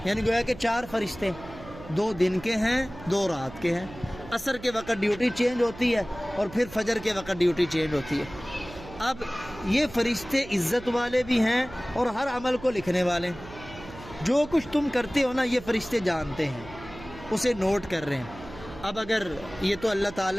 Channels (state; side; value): noise; right; hum, 16 dB below the sound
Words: یعنی گویا کہ 4 فرشتے، 2 دن کے ہیں 2 رات کے ہیں، عصر کے وقت ڈیوٹی چینج ہوتی ہے اور پھر فجر کے وقت ڈیوٹی چینج ہوتی ہے۔ اب یہ فرشتے عزت والے بھی ہیں اور ہر عمل کو لکھنے والے ہیں، جو کچھ تم کرتے ہو نا یہ فرشتے جانتے ہیں، اسے نوٹ کر رہے ہیں، اب اگر یہ تو اللہ